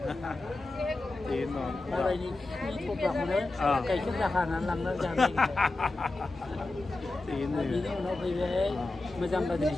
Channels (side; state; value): right; quieter; 3.0 dB